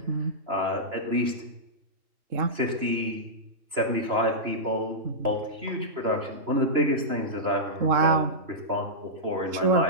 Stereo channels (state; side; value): late; left; 3.0 ms